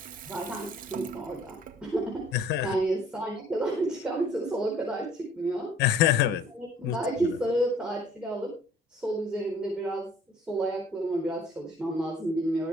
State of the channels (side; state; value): both; normal; correlation 0.55